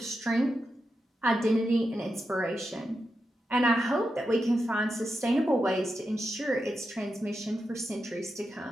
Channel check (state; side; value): normal; both; correlation 0.88